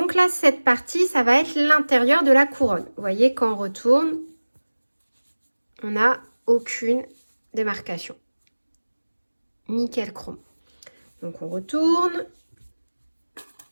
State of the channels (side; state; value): both; inverted; correlation -1.00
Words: là, cette partie, ça va être l'intérieur de la couronne. Vous voyez, quand on retourne, on n'a aucune démarcation. Nickel chrome. Donc on retourne